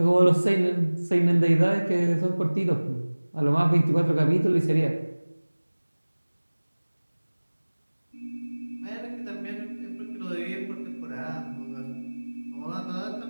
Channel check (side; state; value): both; inverted; correlation -1.00